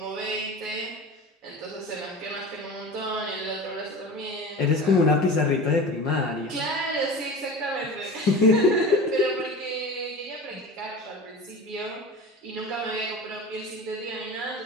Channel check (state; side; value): normal; both; correlation 0.34